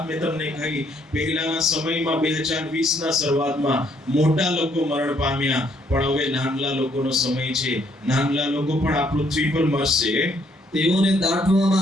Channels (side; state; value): both; normal; correlation 0.69